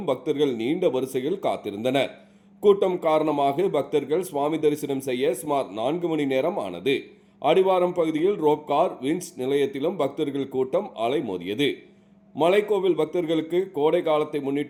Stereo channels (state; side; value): identical; both; correlation 1.00